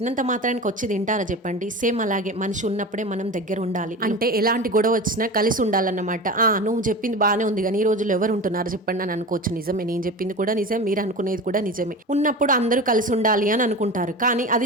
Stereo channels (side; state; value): both; normal; correlation 0.30